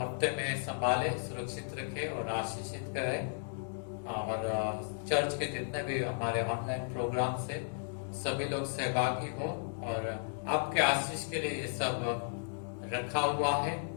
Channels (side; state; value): right; silent; digital silence